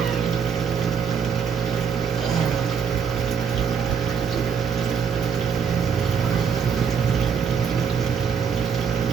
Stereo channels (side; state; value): left; quieter; 6.9 dB